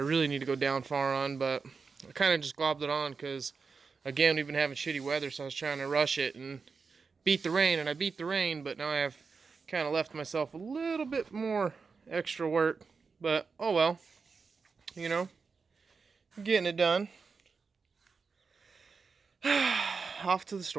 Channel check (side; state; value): left; quieter; 5.0 dB